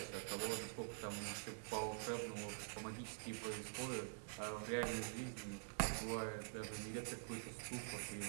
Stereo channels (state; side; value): silent; left; digital silence